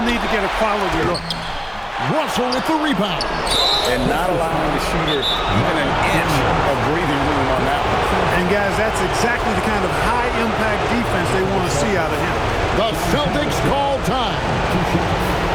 need to get a quality look. Russell with the rebound. And not allowing the shooter even an inch of breathing room on that one. And, guys, that's exactly the kind of high-impact defense they want to see out of him. The Celtics call time.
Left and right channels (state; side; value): identical; both; correlation 1.00